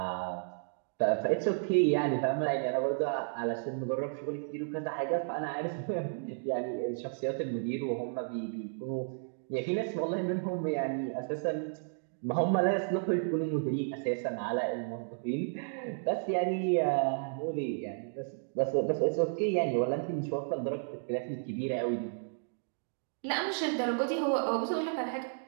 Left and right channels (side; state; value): left; silent; digital silence